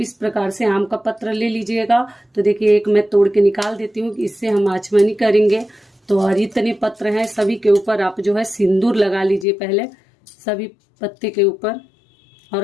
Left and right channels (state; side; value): drops out; right; at 9.5 s